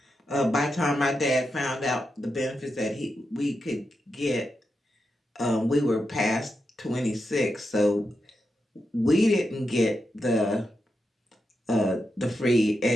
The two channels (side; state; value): both; normal; correlation 0.87